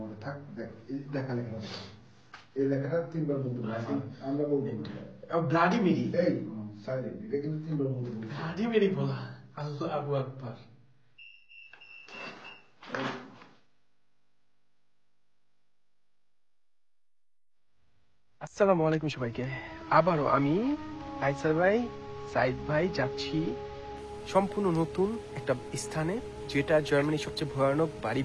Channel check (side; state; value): both; identical; correlation 1.00